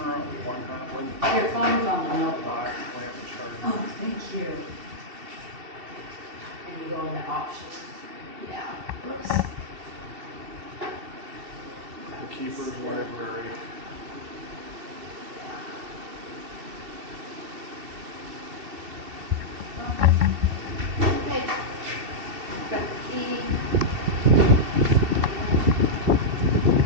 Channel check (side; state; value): left; late; 2.7 ms